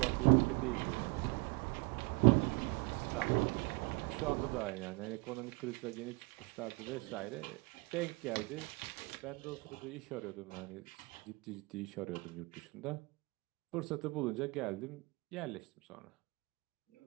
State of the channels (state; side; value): quieter; left; 26.9 dB